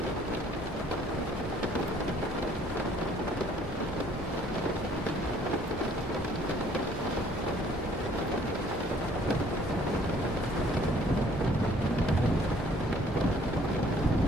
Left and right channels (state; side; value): normal; both; correlation 0.59